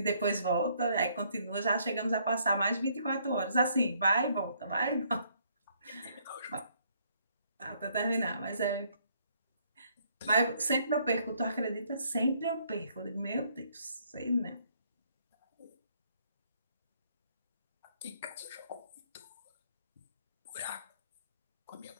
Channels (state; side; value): inverted; both; correlation -0.67